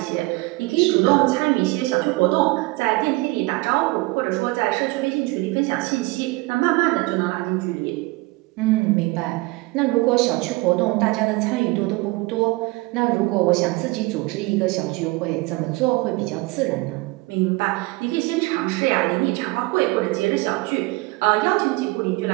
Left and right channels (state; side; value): quieter; left; 23.1 dB